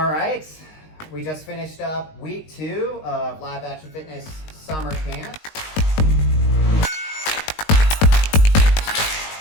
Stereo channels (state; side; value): late; right; 19 ms